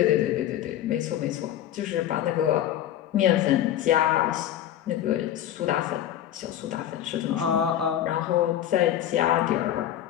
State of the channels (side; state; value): right; quieter; 11.6 dB